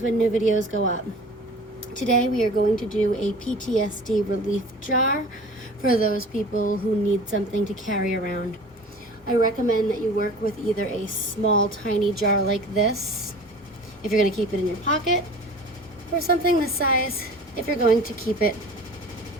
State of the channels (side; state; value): both; normal; correlation 0.41